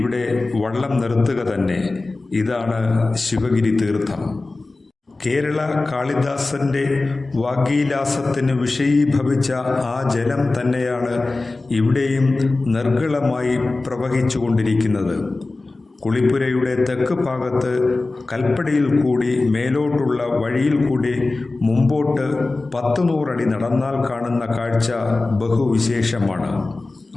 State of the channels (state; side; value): quieter; right; 3.3 dB